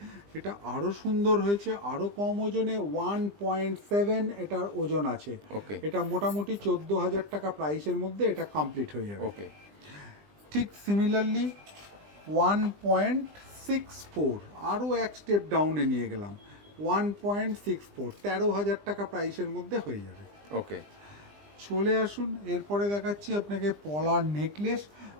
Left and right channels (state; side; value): late; left; 20 ms